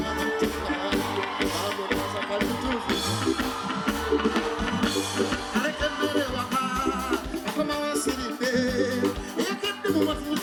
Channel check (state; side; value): identical; both; correlation 1.00